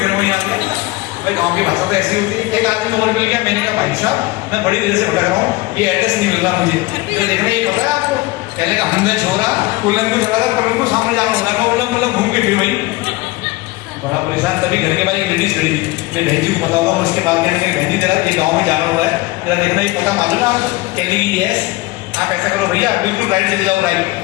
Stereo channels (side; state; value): right; quieter; 20.8 dB